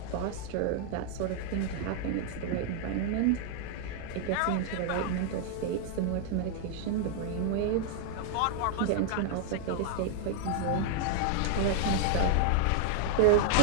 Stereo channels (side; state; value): both; different; correlation 0.00